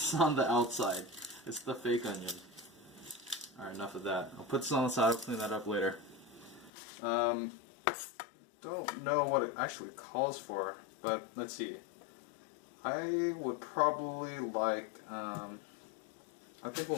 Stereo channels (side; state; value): right; drops out; at 6.7 s